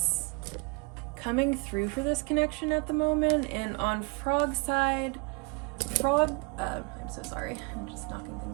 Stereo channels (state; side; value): quieter; left; 29.9 dB